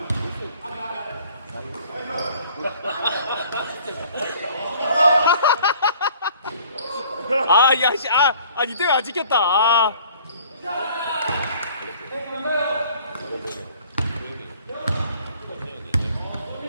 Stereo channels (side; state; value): both; inverted; correlation -0.53